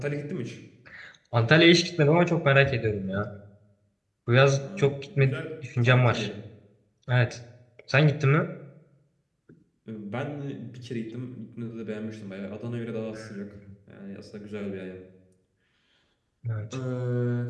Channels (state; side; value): identical; both; correlation 1.00